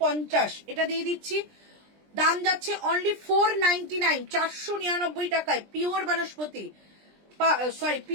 এটা দিয়ে দিচ্ছি, দাম যাচ্ছে অনলি 499 499 টাকায়, পিওর বনস্পতি, সরি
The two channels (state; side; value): late; left; 20 ms